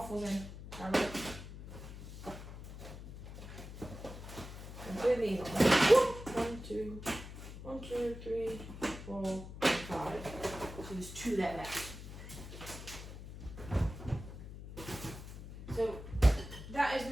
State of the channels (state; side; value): noise; left; hum, 11 dB below the sound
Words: in. I'm doing these on. 1, 2, 1, 2, 3, 4, 5. So there's 2 there left. So that is